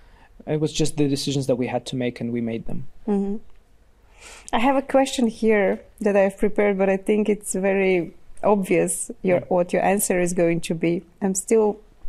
It was just the decisions that we had to make and we made them. I have a question here that I've prepared, but I think it's very obvious what your answer is going to be. I'm still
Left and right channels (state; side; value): identical; both; correlation 1.00